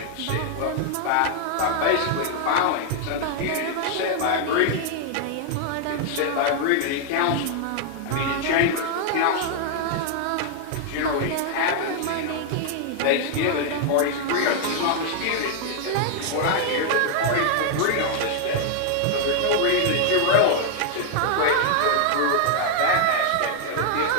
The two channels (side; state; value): both; different; correlation 0.00